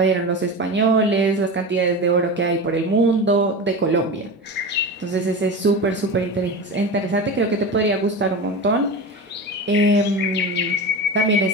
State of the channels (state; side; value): normal; both; correlation 0.26